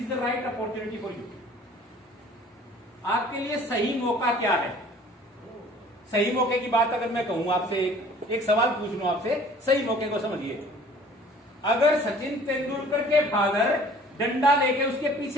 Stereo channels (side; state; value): both; normal; correlation 0.51